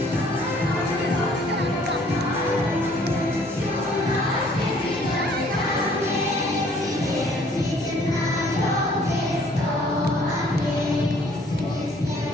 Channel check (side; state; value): both; normal; correlation 0.59